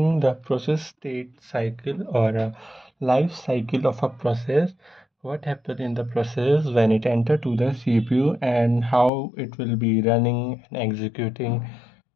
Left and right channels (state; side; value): drops out; right; at 9.1 s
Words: the process state cycle or a life cycle of a process. What happens in the process when it enter to the CPU and how it will be running and executing